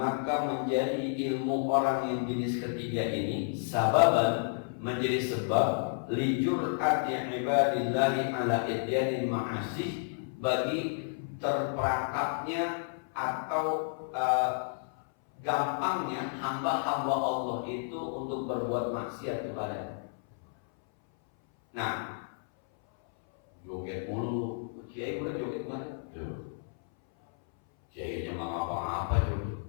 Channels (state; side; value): silent; right; 57 dB below the other